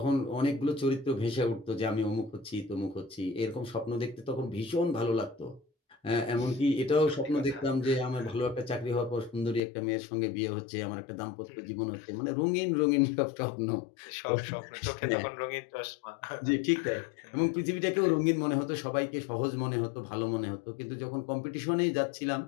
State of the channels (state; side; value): drops out; right; at 9.6 s